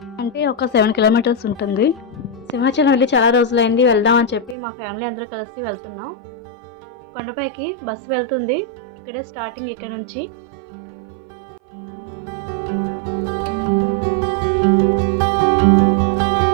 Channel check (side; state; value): left; drops out; at 4.5 s